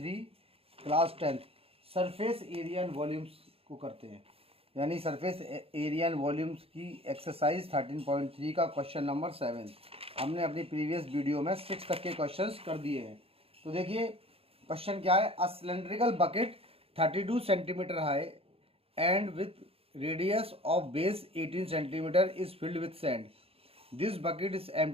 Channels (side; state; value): left; late; 0.28 ms